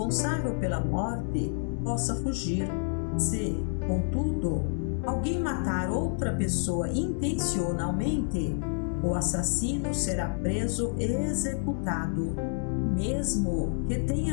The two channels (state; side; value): silent; right; digital silence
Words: pela morte possa fugir. Se, contudo, alguém matar outra pessoa intencionalmente, o assassino será preso e executado, mesmo que